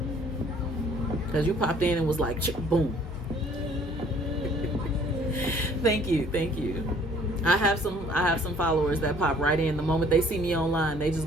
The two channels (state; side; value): normal; both; correlation 0.57